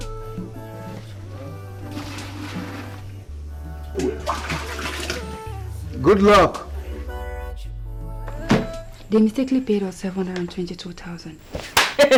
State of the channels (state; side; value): identical; both; correlation 1.00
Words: Good luck. They mistakenly paid us 722,000.